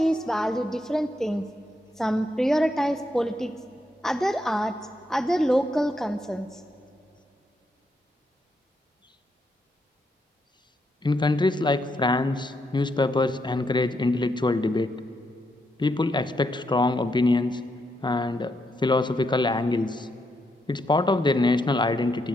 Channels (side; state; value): both; normal; correlation 0.80